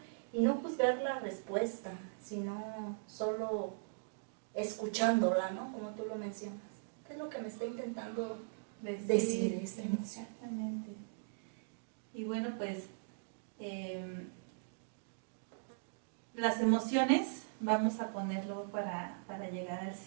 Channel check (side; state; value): left; silent; digital silence